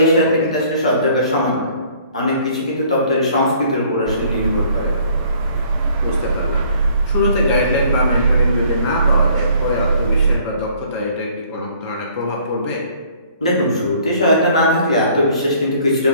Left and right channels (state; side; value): inverted; both; correlation -0.58